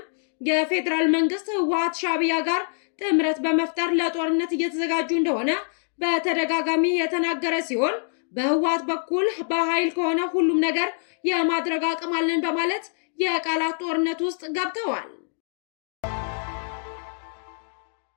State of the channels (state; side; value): silent; right; 62 dB below the other